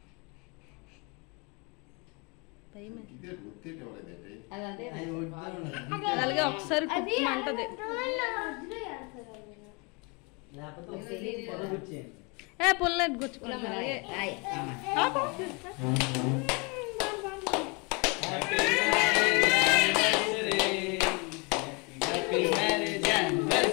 అలాగే ఒకసారి కుట్టమంటది. ఏ పుల్లెట్ గుచ్చుకున్నా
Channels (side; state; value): right; quieter; 29.6 dB